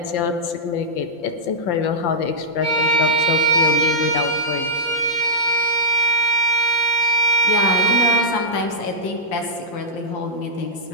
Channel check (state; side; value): late; right; 5.8 ms